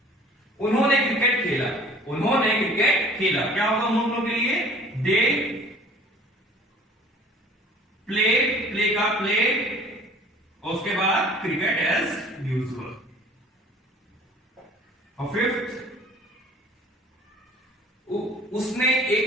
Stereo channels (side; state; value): both; normal; correlation 0.50